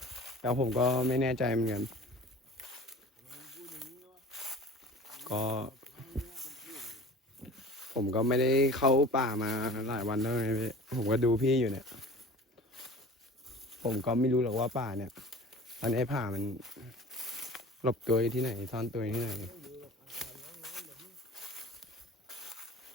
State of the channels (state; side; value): normal; both; correlation 0.42